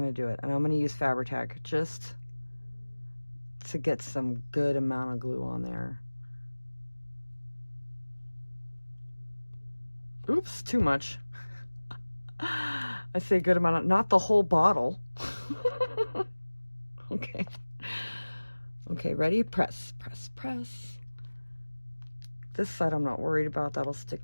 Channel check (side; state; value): both; inverted; correlation -1.00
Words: to do it. And I'm going to use Fabri-Tac just to get some good amount of glue on there. Oops, too much. I say good amount of, not the whole bottle. Okay. Okay, ready? Press, press, press. This side I'm not worried about. That'll